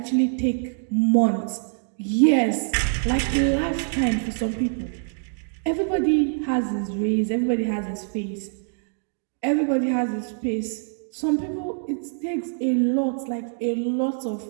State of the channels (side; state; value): left; silent; digital silence